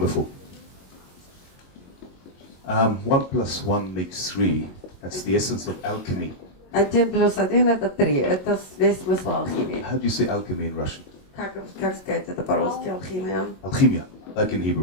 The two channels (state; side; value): late; right; 22 ms